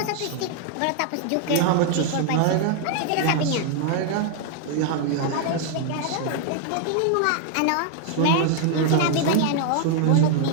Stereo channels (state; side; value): different; both; correlation 0.00